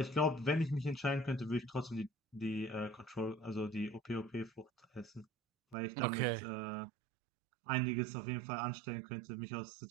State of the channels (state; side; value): drops out; left; at 5.8 s